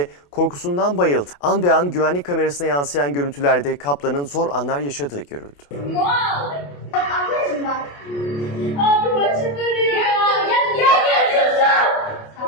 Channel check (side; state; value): right; late; 28 ms